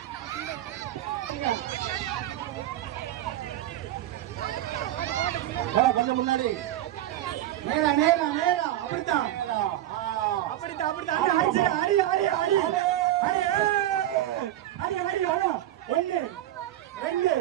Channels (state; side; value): quieter; left; 13.4 dB